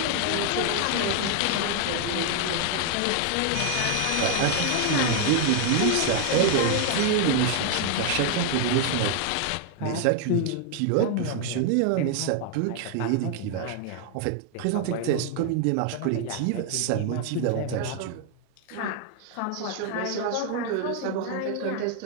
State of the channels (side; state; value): both; different; correlation 0.00